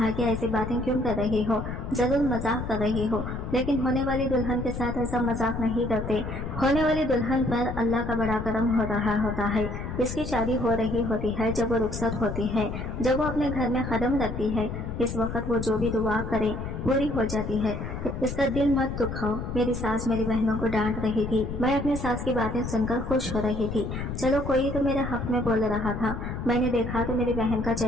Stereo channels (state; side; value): noise; left; rumble, 6 dB below the sound